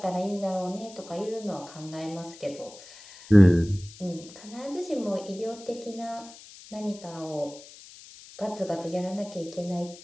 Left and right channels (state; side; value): noise; left; hiss, 19 dB below the sound